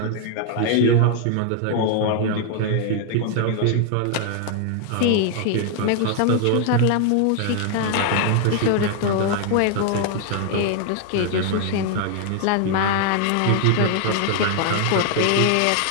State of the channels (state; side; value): different; both; correlation 0.00